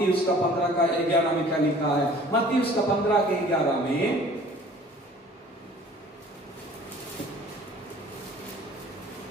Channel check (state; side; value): normal; both; correlation 0.50